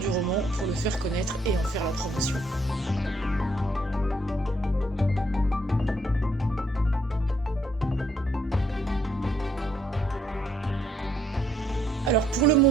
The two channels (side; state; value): both; normal; correlation 0.70